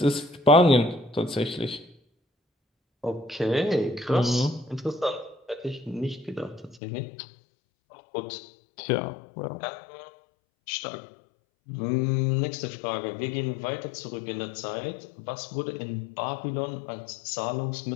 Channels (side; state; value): right; drops out; at 6.8 s